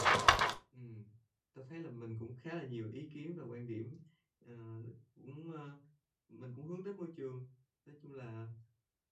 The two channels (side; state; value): both; identical; correlation 1.00